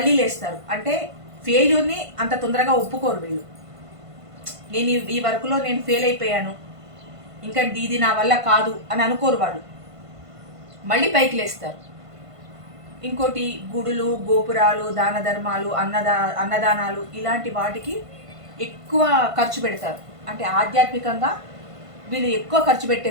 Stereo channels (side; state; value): left; late; 1.5 ms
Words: లేస్తారు. అంటే ఫెయిల్యూర్ని అంత తొందరగా ఒప్పుకోరు వీళ్ళు. నేను ఈ వర్క్లో నేను ఫెయిల్ అయిపోయాను, ఇంకా ఇది నా వల్ల కాదు అని అనుకోరు వాళ్ళు, మళ్ళీ పైకి లేస్తారు. ఇంకోటి, గుడులు, గోపురాలు, దాన ధర్మాలు, అన్నదానాలు ఇలాంటి వాటికి ఎక్కువ ఖర్చు పెడతారు. అంటే ఆధ్యాత్మికంగా వీళ్ళు ఎక్కువ ఖర్చు